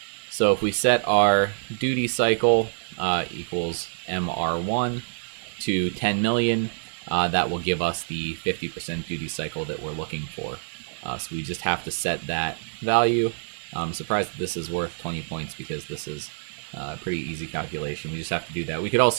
So if we set our duty cycle equals MR1 to 10 million, that will give us the 50% duty cycle that we're looking for. So we just have to set that value. I'm surprised that this is worth 20 points because this is a pretty easy calculation. We just have to do that. We could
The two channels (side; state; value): left; silent; 61 dB below the other